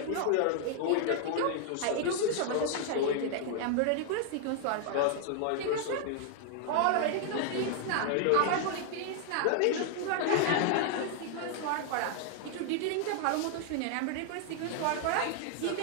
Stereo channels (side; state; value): both; different; correlation 0.00